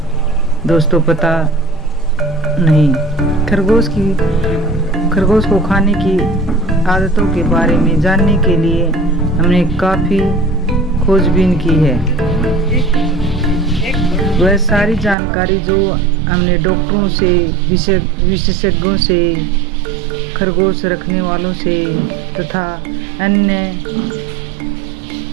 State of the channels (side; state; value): left; drops out; at 15.2 s